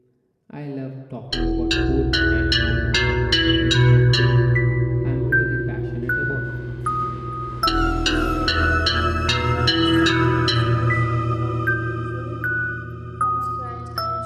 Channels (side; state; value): both; identical; correlation 1.00